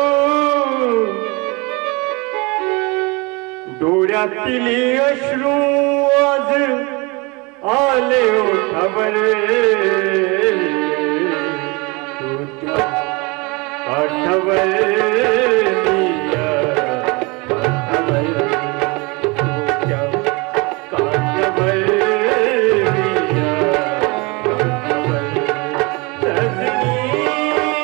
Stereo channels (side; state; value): left; quieter; 27.3 dB